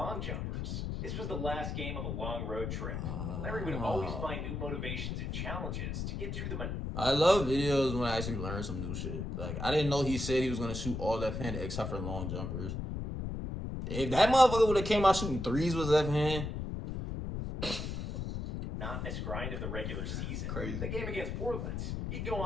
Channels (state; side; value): noise; left; rumble, 4 dB below the sound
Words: jumpers. This was the last game of a long road trip. Larry would always find new motivations and challenges to get through the I love videos when I actually learn some new shit. Like, I didn't know he said he was going to shoot all left-handed except for long jumpers. If that motherfucker would have came out shooting threes with left-hand. monotonous grind of the regular season. Crazy. The game against Portland, he'd go